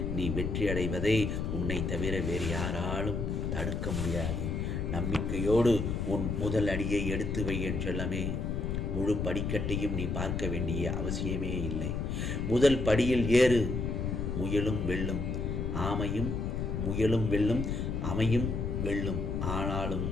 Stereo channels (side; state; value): left; noise; rumble, 1 dB below the sound